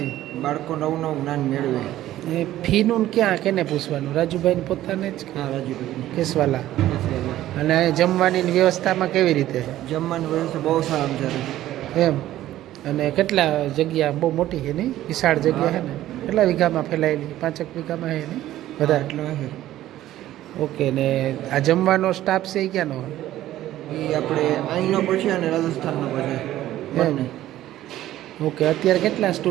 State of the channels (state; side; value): quieter; left; 13.9 dB